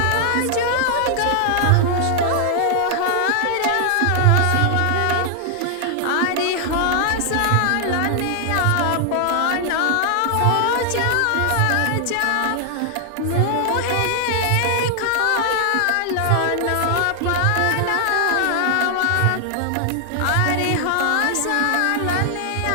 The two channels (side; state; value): both; different; correlation 0.00